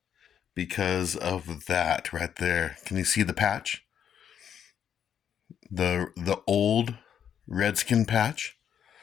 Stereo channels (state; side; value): quieter; right; 8.8 dB